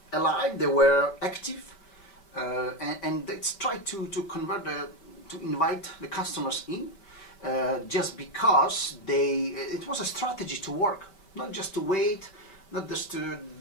alive, they were active, and they tried to convert to invite the customers in, just because it was a strategy to work, not just to wait, not just to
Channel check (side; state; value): right; late; 5.2 ms